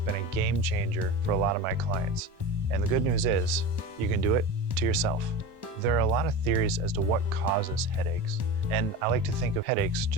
a game changer for a lot of my clients. And the good news is you can do it to yourself. There are a lot of theories as to what causes headaches, and I like to think of headaches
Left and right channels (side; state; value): left; late; 1.1 ms